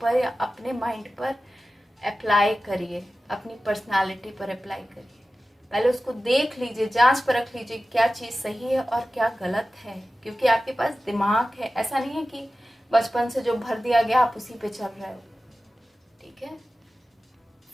या अपने माइंड पर अप्लाई करिए, अपनी पर्सनालिटी पर अप्लाई करिए। पहले उसको देख लीजिए, जांच परख लीजिए क्या चीज़ सही है और क्या गलत है, क्योंकि आपके पास दिमाग है। ऐसा नहीं है कि बचपन से जो भर दिया गया आप उसी पे चल रहे हो। ठीक है,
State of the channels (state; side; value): normal; both; correlation 0.95